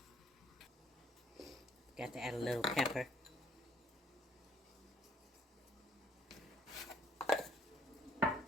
Got to add a little pepper.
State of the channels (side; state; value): both; normal; correlation 0.62